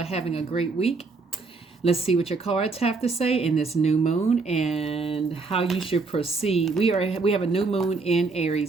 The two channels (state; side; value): quieter; left; 4.1 dB